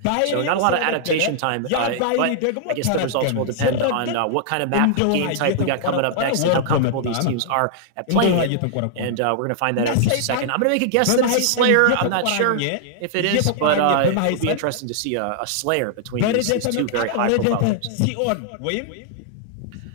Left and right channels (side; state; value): both; different; correlation -0.01